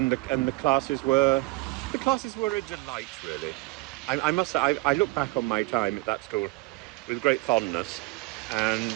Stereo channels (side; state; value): left; quieter; 23.3 dB